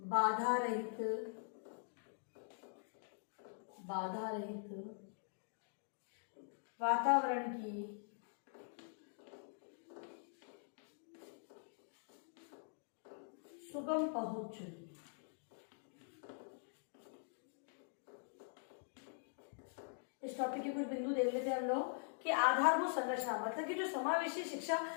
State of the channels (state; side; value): silent; right; digital silence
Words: रहित वातावरण की सुगम पहुंच। इस टॉपिक के कुछ बिंदु देख लेते हैं हम लोग कि आधारभूत संरचना मतलब कि जो समावेशी शिक्षा